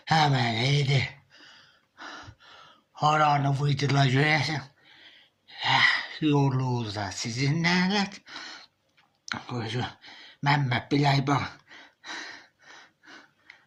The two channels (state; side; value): identical; both; correlation 1.00